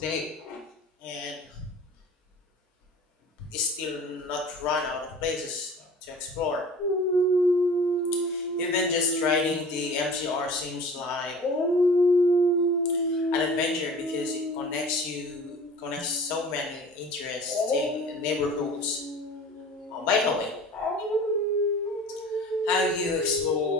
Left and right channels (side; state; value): both; normal; correlation 0.42